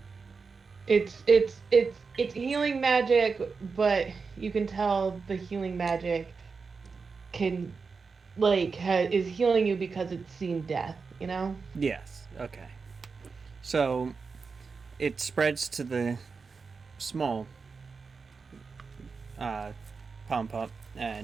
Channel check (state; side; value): quieter; left; 4.9 dB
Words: it's healing magic, but you can tell the healing magic can is healing you because it's seen death, you know? Yes. Okay. So it spreads to the small palm pup,